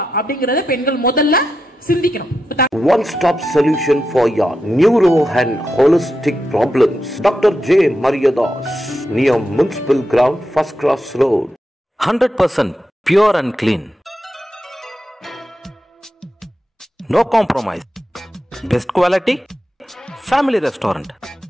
அப்படிங்கறத பெண்கள் முதல்ல சிந்திக்கணும். One stop solution for your neuro and holistic problems. Dr. J. Mariadas, near Municipal Ground, First Cross Road. 100% pure and clean. No compromise. Best quality. Family restaurant.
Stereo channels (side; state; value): both; normal; correlation 0.87